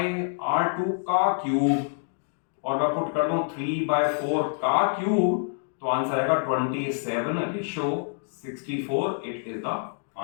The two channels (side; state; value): right; silent; digital silence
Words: r2 का क्यूब और मैं पुट कर दूं 3/4 का क्यूब, तो आंसर आएगा 27/64। It is the